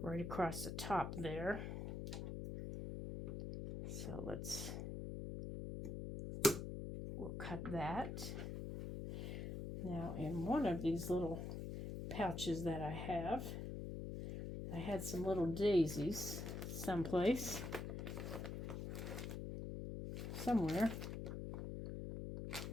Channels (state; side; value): noise; left; hum, 5 dB below the sound